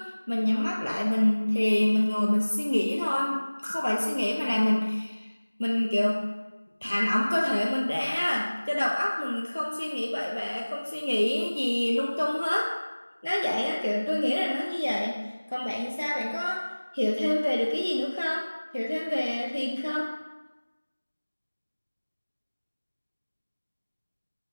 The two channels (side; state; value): both; inverted; correlation -1.00